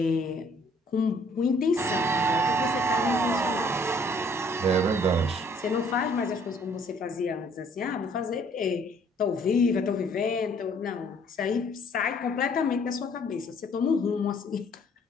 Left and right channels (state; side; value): normal; both; correlation 0.60